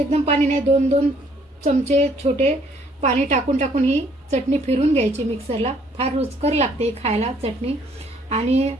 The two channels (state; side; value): normal; both; correlation 0.63